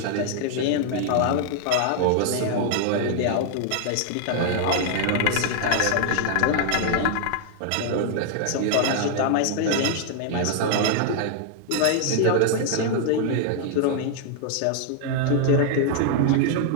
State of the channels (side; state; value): both; different; correlation 0.00